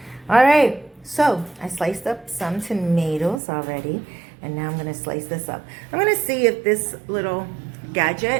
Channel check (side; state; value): left; drops out; at 3.4 s